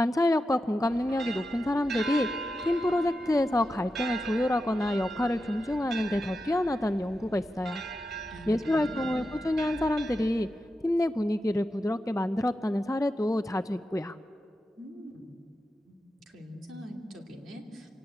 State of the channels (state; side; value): normal; both; correlation 0.90